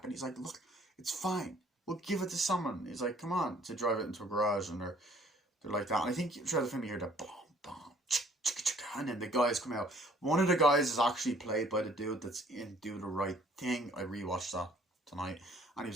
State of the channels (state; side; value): normal; both; correlation 0.58